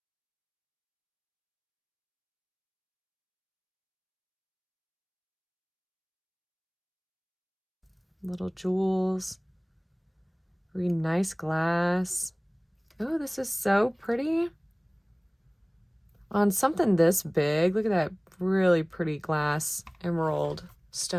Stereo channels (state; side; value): identical; both; correlation 1.00